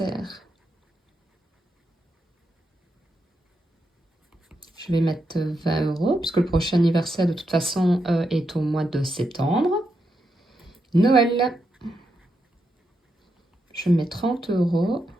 je vais mettre 20 €, puisque le prochain anniversaire, de toute façon, est au mois de septembre. Noël, je mets 30 €.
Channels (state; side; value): normal; both; correlation 0.84